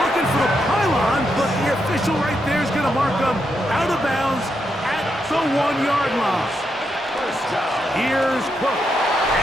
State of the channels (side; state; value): both; normal; correlation 0.82